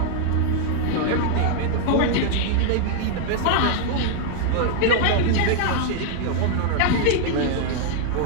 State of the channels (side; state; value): both; different; correlation -0.01